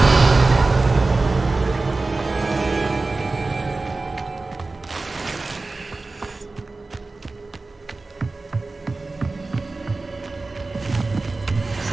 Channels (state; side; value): quieter; left; 3.5 dB